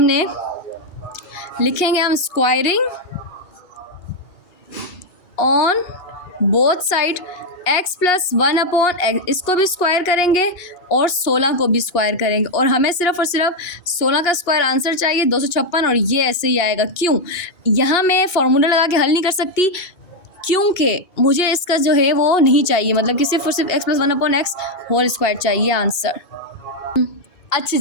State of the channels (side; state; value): right; late; 2.8 ms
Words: लिखेंगे हम squaring on both side, x + 1/x, इसको भी स्क्वायर करेंगे और 16 को भी स्क्वायर करेंगे, और हमें सिर्फ और सिर्फ 16 का स्क्वायर आंसर चाहिए 256, और ये ऐसे ही आएगा। क्यों, यहाँ मैं फार्मूला लगा के हल नहीं कर सकती, क्योंकि मुझे इसका जो है वो नहीं चाहिए, मतलब कि सिर्फ और सिर्फ x + 1/x होल स्क्वायर चाहिए आंसर। अच्छा